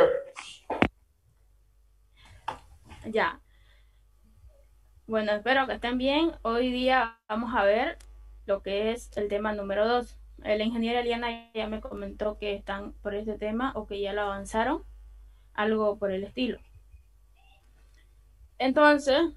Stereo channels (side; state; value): both; identical; correlation 1.00